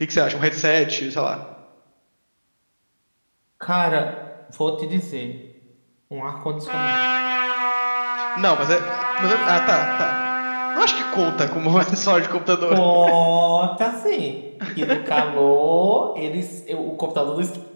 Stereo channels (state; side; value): inverted; both; correlation -1.00